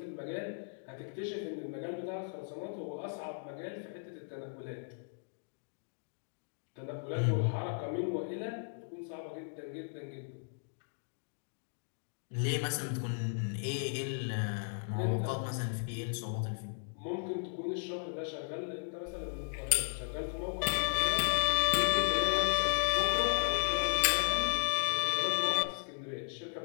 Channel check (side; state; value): right; silent; digital silence